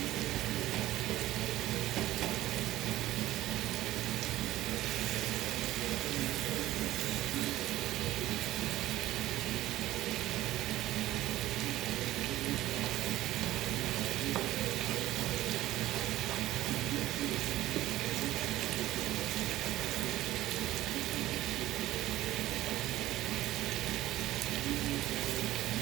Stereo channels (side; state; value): left; quieter; 15.5 dB